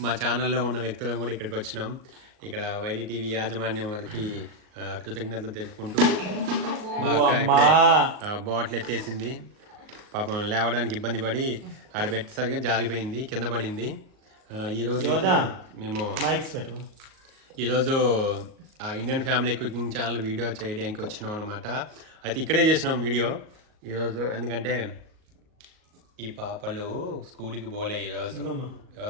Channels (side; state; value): left; late; 38 ms